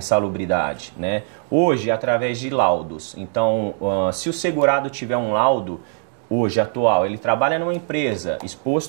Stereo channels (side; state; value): left; silent; 65 dB below the other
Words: né? Hoje, através de laudos. Então, se o segurado tiver um laudo, hoje, atual, ele trabalha numa empresa